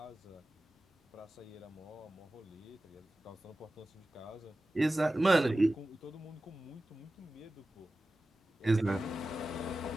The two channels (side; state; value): both; normal; correlation 0.95